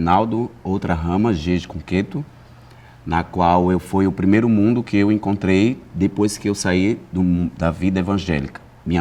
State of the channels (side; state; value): both; identical; correlation 1.00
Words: outra rama, Jeje Cunqueto, na qual foi o primeiro mundo que eu encontrei depois que eu saí da vida evangélica. Minha